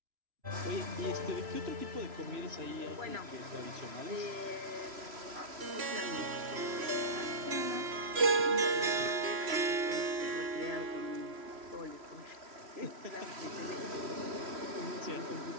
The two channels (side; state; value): left; late; 3.0 ms